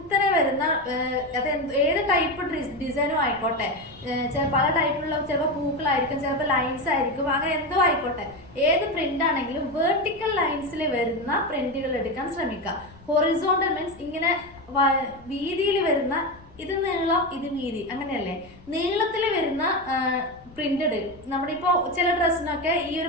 വരുന്ന ഏത് ടൈപ്പ് ഡിസൈനും ആയിക്കോട്ടെ, പല ടൈപ്പിലുള്ള ചിലപ്പോൾ പൂക്കളായിരിക്കും, ചിലപ്പോൾ ലൈൻസ് ആയിരിക്കും, അങ്ങനെ എന്തോ ആയിക്കോട്ടെ, ഏത് പ്രിന്റ് ആണെങ്കിലും വെർട്ടിക്കൽ ലൈൻസിൽ വരുന്ന പ്രിന്റുകൾ എടുക്കാൻ ശ്രമിക്കുക. ഹൊറിസോണ്ടൽ മീൻസ് ഇങ്ങനെ വീതിയിൽ വരുന്ന, ഇത് നീളം ഇത് വീതി, അങ്ങനെയല്ലേ, നീളത്തിൽ വരുന്ന പ്രിന്റഡ്. നമ്മുടെ ഇപ്പോൾ ചില ഡ്രസ്സിനൊക്കെ ഈ ഒരു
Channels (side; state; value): left; noise; rumble, 23 dB below the sound